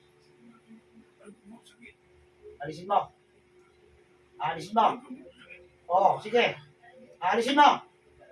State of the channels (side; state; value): both; identical; correlation 1.00